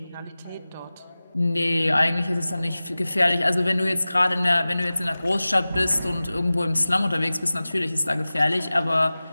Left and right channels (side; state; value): both; inverted; correlation -0.97